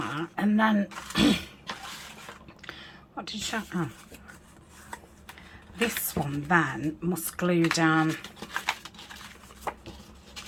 and then what did you? Oh, this one then must glue down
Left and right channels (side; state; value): both; identical; correlation 1.00